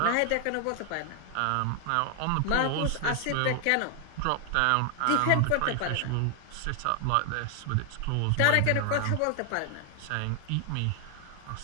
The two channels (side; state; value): both; different; correlation 0.00